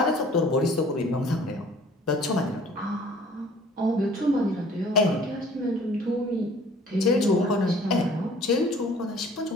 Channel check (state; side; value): normal; both; correlation 0.52